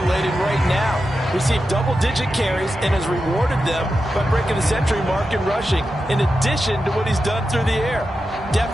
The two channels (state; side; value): normal; both; correlation 0.90